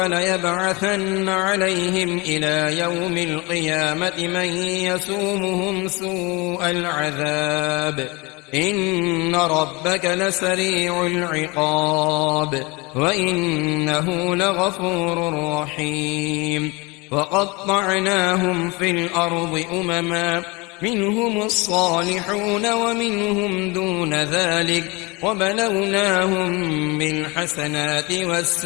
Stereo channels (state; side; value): quieter; right; 26.2 dB